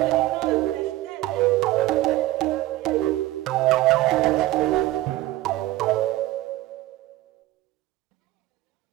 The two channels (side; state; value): left; quieter; 16.6 dB